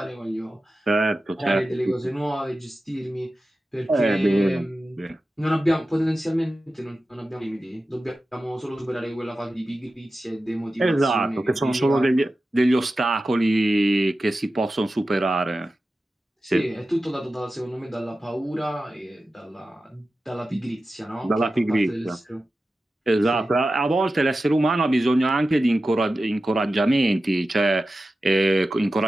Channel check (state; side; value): normal; both; correlation 0.93